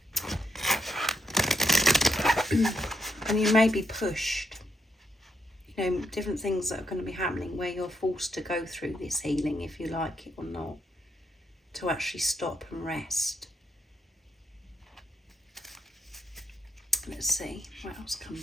And you may be pushed. You know, different things that are going to be happening where you're forced to go through this healing, if you like it or not, to actually stop and rest. Let's see what else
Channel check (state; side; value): normal; both; correlation 0.79